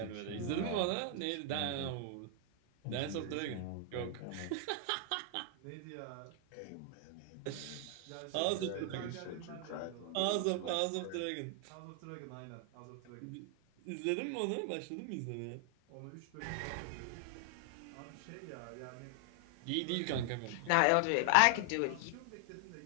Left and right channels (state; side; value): different; both; correlation 0.00